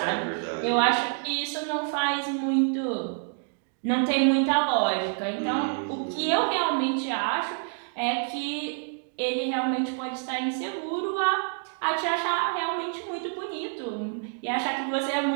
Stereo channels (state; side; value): silent; left; 60 dB below the other